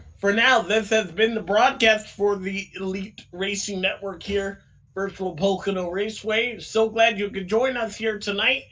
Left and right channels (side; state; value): both; identical; correlation 1.00